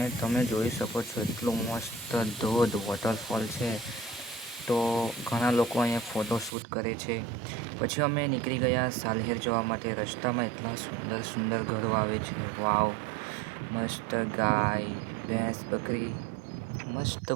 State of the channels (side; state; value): left; drops out; at 6.6 s